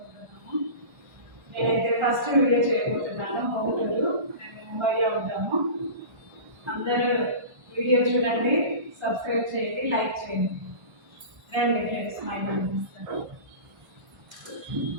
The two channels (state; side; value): late; left; 1.3 ms